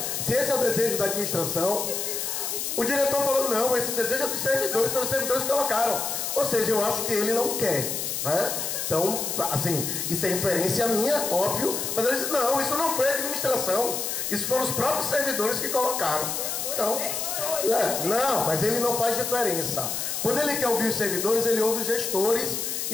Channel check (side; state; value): left; noise; hiss, 2 dB below the sound